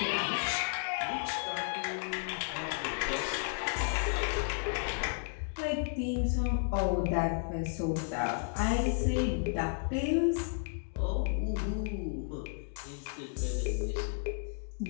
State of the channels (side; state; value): right; silent; digital silence